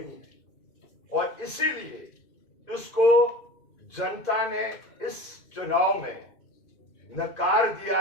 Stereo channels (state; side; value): late; right; 2.5 ms